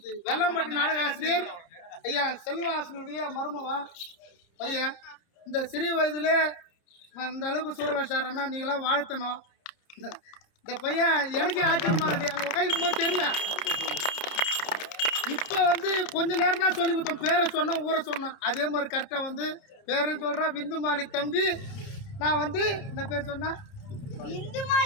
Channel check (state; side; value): late; right; 30 ms